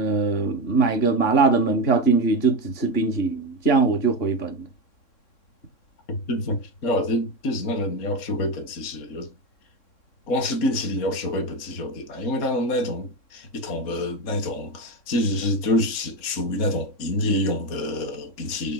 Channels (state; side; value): late; right; 3.6 ms